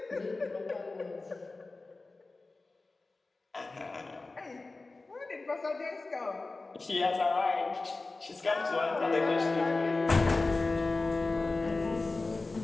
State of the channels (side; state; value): right; quieter; 3.5 dB